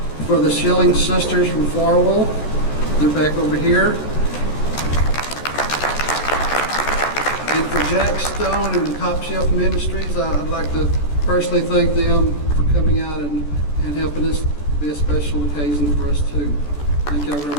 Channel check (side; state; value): right; late; 14 ms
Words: for the Schilling sisters from Farwell. They're back over here. And for Jack Stone and the Top Shelf Ministries, I'd like to personally thank them for coming out and helping us be a special occasion for us too. Thank you all